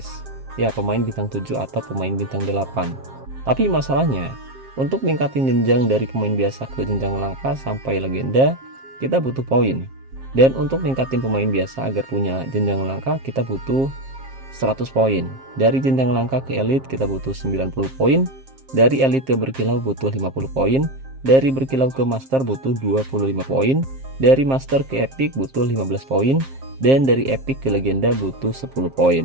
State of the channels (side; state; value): left; late; 7.5 ms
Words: Ya, pemain bintang 7 atau pemain bintang 8. Tapi masalahnya, untuk ningkatin jenjang dari pemain biasa ke jenjang langka sampai legenda, kita butuh poin. Dan untuk ningkatin pemain biasa agar punya jenjang langka, kita butuh 100 poin. Dari jenjang langka ke elite kita butuh 90 poin. Dari elite ke berkilau butuh 50 poin. Dari berkilau ke master butuh 25 poin, dari master ke epic butuh 15 poin, dan dari epic ke legenda butuh 10 poin.